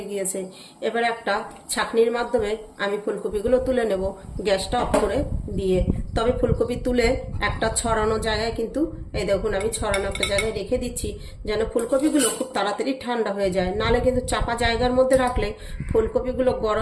গিয়েছে। এবার একটা ছাঁকনির মাধ্যমে আমি ফুলকপিগুলো তুলে নেব, গ্যাসটা অফ করে দিয়ে। তবে ফুলকপি তুলে একটা ছড়ানো জায়গায় কিন্তু এই দেখুন আমি ছড়ানো একটা জায়গায় রেখে দিচ্ছি, যেন ফুলকপিগুলো খুব তাড়াতাড়ি ঠান্ডা হয়ে যায়। নাহলে কিন্তু চাপা জায়গার মধ্যে রাখলে ফুলকপিগুলো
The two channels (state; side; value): identical; both; correlation 1.00